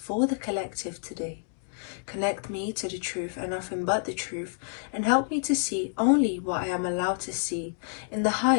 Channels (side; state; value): right; silent; digital silence